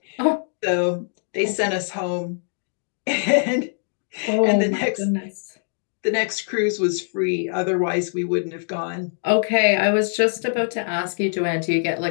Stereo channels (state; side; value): silent; right; digital silence